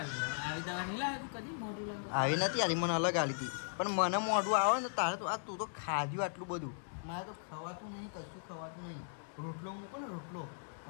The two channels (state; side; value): silent; right; digital silence